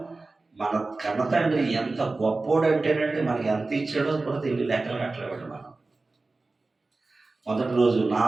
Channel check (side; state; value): left; quieter; 3.5 dB